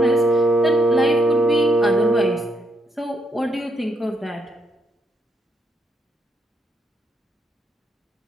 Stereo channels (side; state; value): both; normal; correlation 0.76